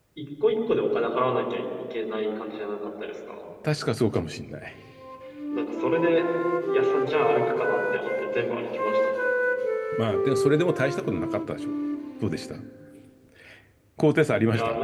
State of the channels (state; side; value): identical; both; correlation 1.00